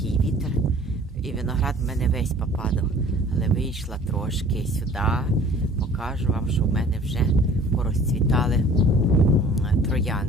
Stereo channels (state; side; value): normal; both; correlation 0.49